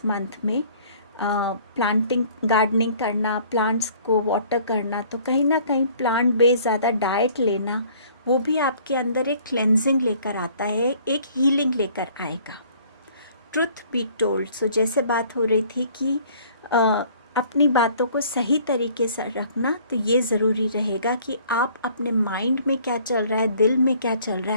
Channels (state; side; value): inverted; both; correlation -0.55